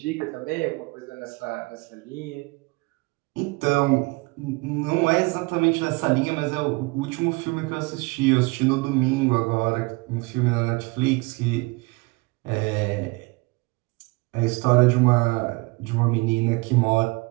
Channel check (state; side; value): quieter; left; 26.4 dB